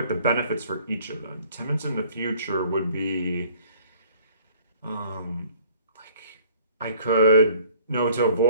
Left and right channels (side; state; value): both; inverted; correlation -0.54